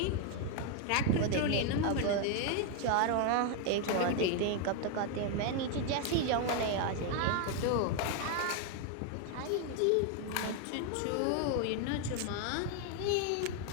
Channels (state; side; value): different; both; correlation 0.01